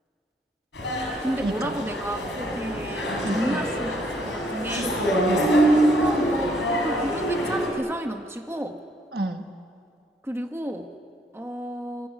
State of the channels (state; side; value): normal; both; correlation 0.68